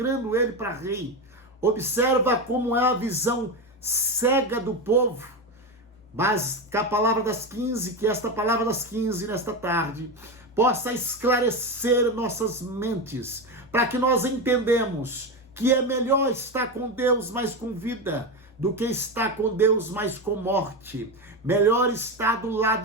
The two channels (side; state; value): both; normal; correlation 0.16